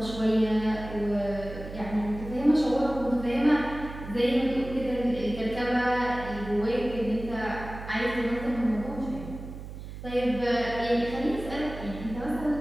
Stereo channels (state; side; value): noise; right; hum, 11 dB below the sound